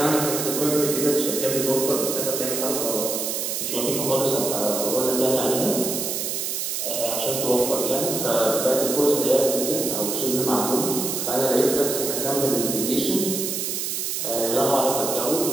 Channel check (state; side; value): noise; right; hiss, 2 dB below the sound